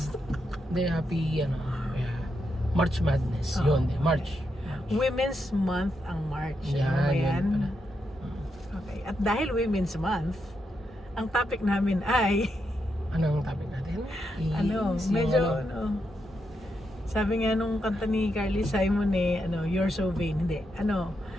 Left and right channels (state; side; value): normal; both; correlation 0.83